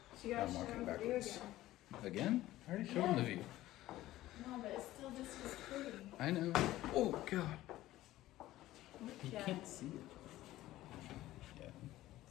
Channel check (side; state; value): right; quieter; 15.5 dB